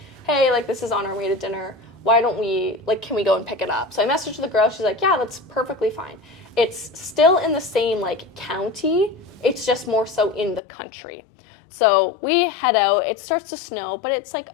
hey, this is on our way to dinner. Why don't we, can we go and pick it up? So I messaged the girl. She's like, yeah, that's perfectly fine. It's still in the same, county. It's just more so in the country. So we head out. It starts to snow, but it's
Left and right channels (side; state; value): right; drops out; at 10.6 s